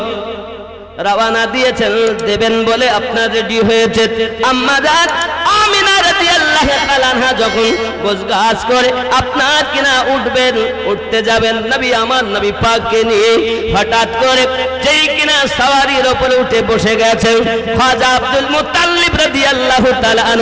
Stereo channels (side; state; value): both; identical; correlation 1.00